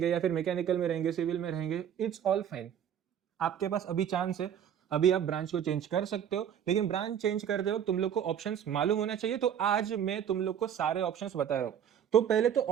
या फिर मैकेनिकल में रहेंगे, सिविल में रहेंगे। इट्स ऑल फाइन, आपके पास अभी चांस है, अभी आप ब्रांच को चेंज कर सकते हो। लेकिन ब्रांच चेंज करते हो तुम लोग को ऑप्शंस मालूम होना चाहिए। तो आज मैं तुम लोग को सारे ऑप्शंस बता रहा हूं। तो पहले तो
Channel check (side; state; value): left; quieter; 9.1 dB